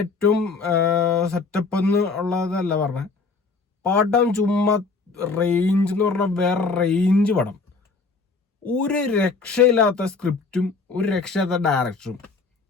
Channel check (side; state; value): right; quieter; 4.3 dB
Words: ഏറ്റവും സെറ്റപ്പ് എന്ന് ഉള്ളതല്ല പറഞ്ഞ പടം. ചുമ്മാ റേഞ്ച് എന്ന് പറഞ്ഞാൽ വേറെ റേഞ്ച് പടം. ഒരു രക്ഷയില്ലാത്ത സ്ക്രിപ്റ്റും ഒരു രക്ഷയില്ലാത്ത